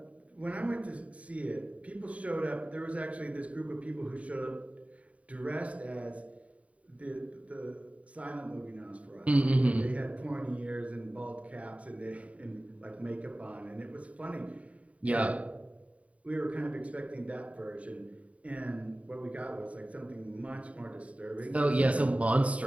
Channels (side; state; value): left; late; 0.067 ms